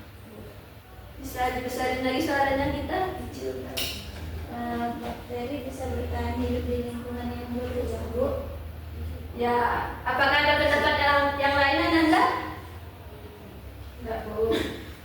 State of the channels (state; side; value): identical; both; correlation 1.00